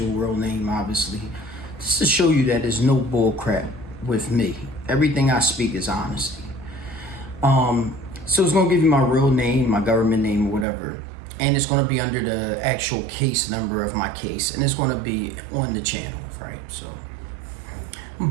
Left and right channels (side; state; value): left; drops out; at 10.7 s